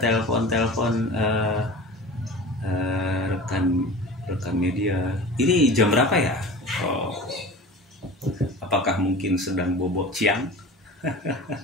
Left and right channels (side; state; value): both; normal; correlation 0.37